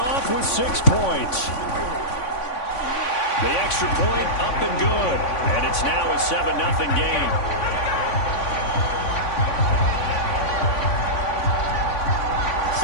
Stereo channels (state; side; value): late; right; 3.5 ms